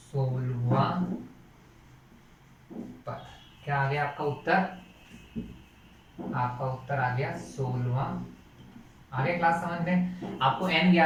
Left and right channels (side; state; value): both; identical; correlation 1.00